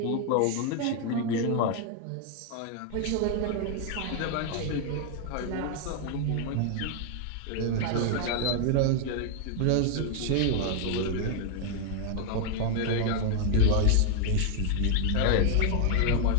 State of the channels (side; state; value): both; different; correlation 0.00